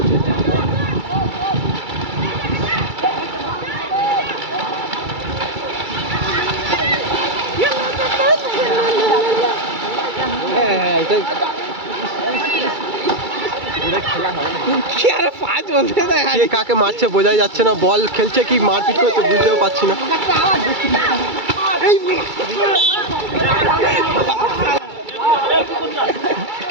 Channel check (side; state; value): left; late; 2.3 ms